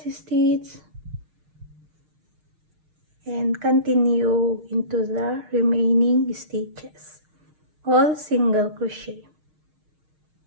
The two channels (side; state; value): left; late; 6.4 ms